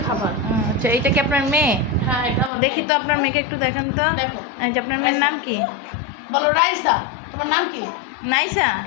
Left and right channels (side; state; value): right; drops out; at 2.5 s